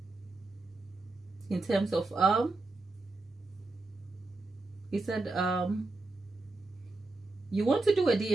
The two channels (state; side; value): quieter; left; 3.2 dB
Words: in terms of he said you want to do a